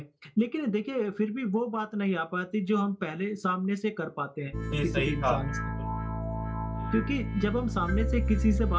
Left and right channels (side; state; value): both; identical; correlation 1.00